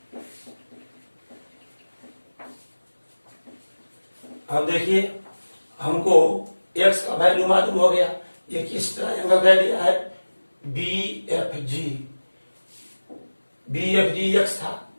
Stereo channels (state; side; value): inverted; both; correlation -1.00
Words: अब देखिए, हमको x का वैल्यू मालूम हो गया, ये किस ट्रायंगल का एरिया है? बी एफ जी एक्स था